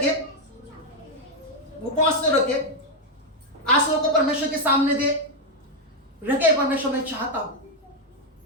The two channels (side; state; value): both; normal; correlation 0.03